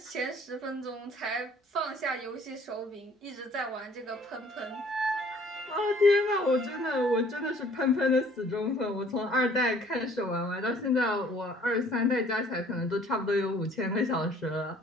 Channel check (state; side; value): normal; both; correlation 0.56